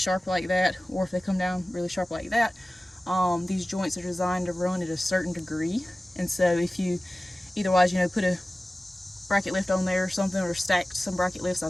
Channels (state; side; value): normal; both; correlation 0.96